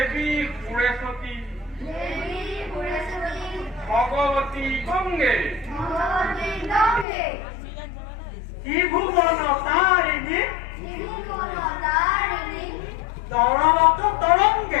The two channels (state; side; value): drops out; right; at 7.1 s